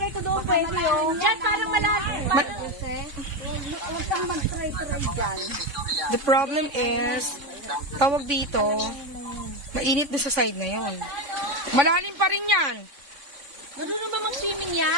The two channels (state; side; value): late; left; 3.5 ms